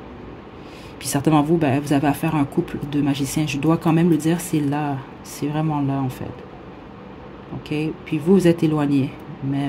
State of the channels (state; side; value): identical; both; correlation 1.00